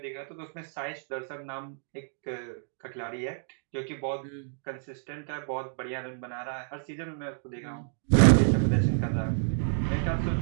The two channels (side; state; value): left; silent; digital silence